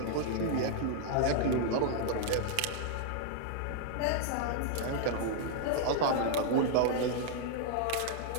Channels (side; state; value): both; different; correlation -0.01